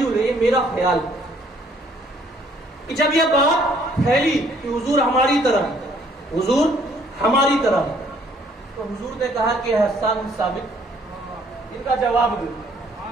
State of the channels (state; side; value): normal; both; correlation 0.63